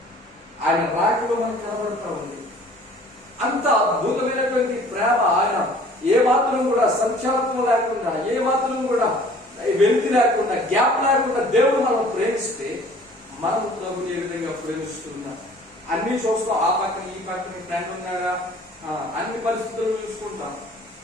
ఆయన రాకలో మనకు కనబడతా ఉంది. అంత అద్భుతమైనటువంటి ప్రేమ. ఆయన ఏ మాత్రం కూడా సంచాలత్వం లేకుండా, ఏ మాత్రం కూడా వెలితి లేకుండా, గ్యాప్ లేకుండా దేవుడు మనం ప్రేమిస్తే మనం ప్రభుని ఏ విధంగా ప్రేమిస్తున్నాం. అన్ని చూస్తాం, ఆ పక్కన ఈ పక్కన ఫ్రెండ్ ఉన్నారా, అన్ని పరిస్థితులు చూసుకుంటాం,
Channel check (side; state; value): both; normal; correlation 0.51